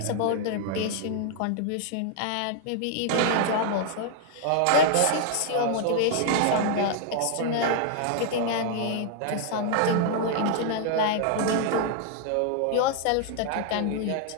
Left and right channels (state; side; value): different; both; correlation 0.00